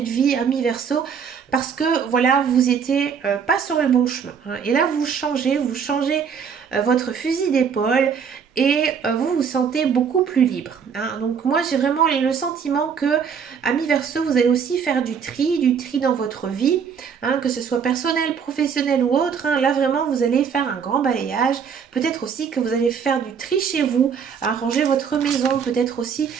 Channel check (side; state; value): left; quieter; 6.8 dB